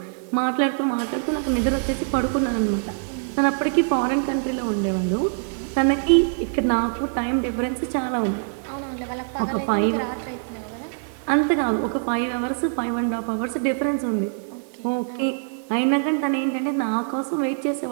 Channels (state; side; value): silent; left; digital silence